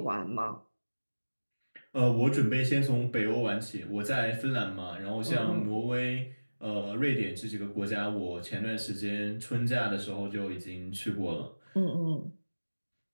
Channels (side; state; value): both; inverted; correlation -1.00